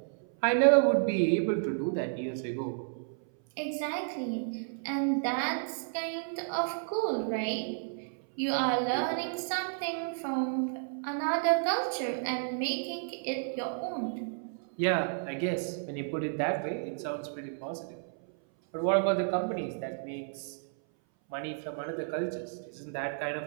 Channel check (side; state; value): left; silent; 57 dB below the other